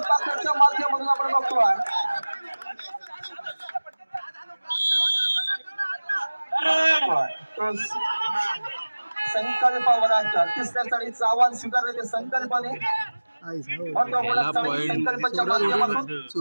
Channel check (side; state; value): both; inverted; correlation -1.00